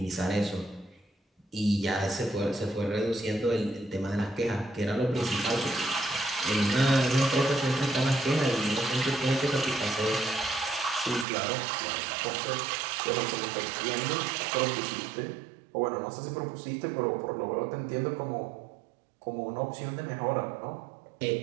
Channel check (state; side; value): drops out; left; at 11.2 s